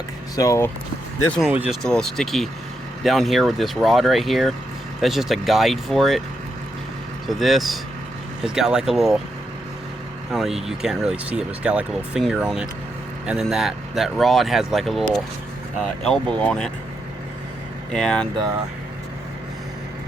So this one was just a little sticky down here with this rod right here. That's just a guide for it. So this has got like a little, I don't know, you can't really see it, but it's got like a little finger on it. And then that rod has like a little elbow on it. And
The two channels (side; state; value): both; normal; correlation 0.82